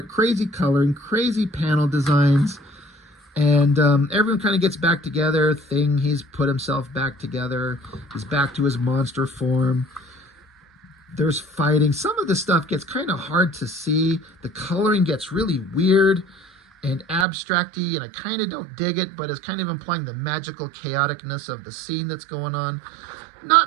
crazy coloring, crazy panel designs. And everyone kind of gets back together. He's put himself back together. He's back to his monster form. There's fighting. Some of the stuff gets kind of hard to see. The coloring gets really weird and abstract-y, and I kind of don't dig it, but it's kind of implying the magical chaoticness of the scene that's going on.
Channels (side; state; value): left; drops out; at 17.2 s